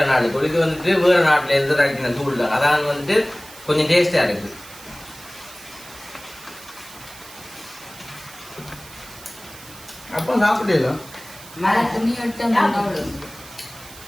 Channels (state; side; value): noise; right; hiss, 18 dB below the sound